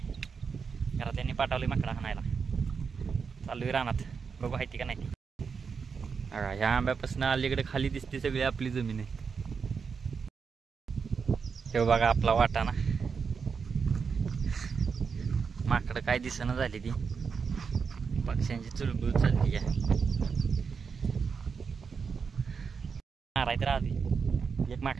घरात त्यांनी पाठवले माकडा हाणायला. चाललोय रानात, बघू आहे ती का नाही ती. ह्या आंब्यापासून अलीकडे खाली दिसते सगळी आपली जमीन आहे. हे बघा आपला वाटा ना. माकडं काय दिसणं झाली ती, पक्ष्यांची चुलबुल चालली आहे. मारायत राहते एक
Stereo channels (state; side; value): quieter; left; 5.7 dB